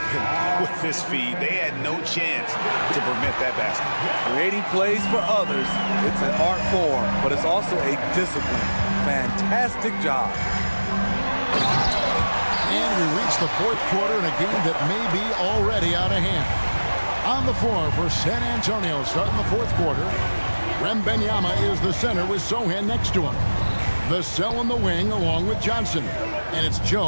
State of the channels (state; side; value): inverted; both; correlation -1.00